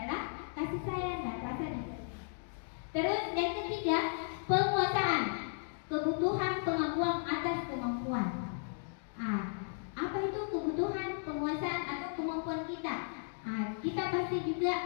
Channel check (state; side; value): silent; right; digital silence